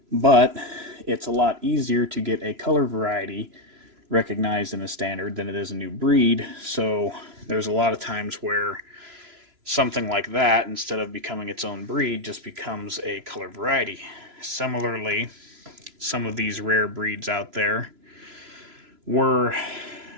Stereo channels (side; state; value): left; late; 3.0 ms